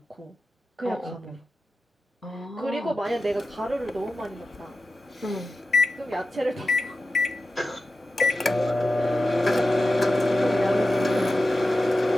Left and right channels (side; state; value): both; normal; correlation 0.92